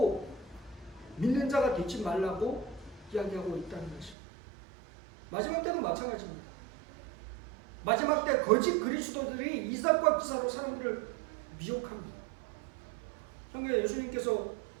믿는 자가 되지 말라고 이야기하고 있다는 것입니다. 마지막 때도 마찬가지입니다. 마지막 때 거짓 그리스도들이 이삭과 기사로 사람들을 미혹합니다. 성경에 예수님께서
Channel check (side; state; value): left; drops out; at 4.2 s